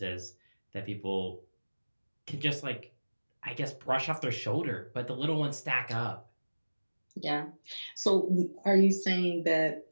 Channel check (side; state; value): both; inverted; correlation -1.00